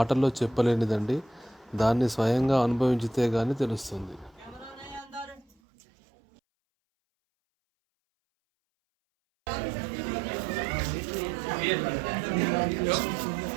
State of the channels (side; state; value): left; drops out; at 5.6 s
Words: చెప్పలేనిదండి. దాన్ని స్వయంగా అనుభవించితే కానీ తెలుస్తుంది.